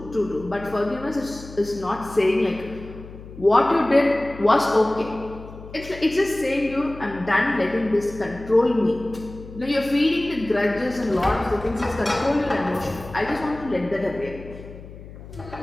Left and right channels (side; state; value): left; noise; hum, 16 dB below the sound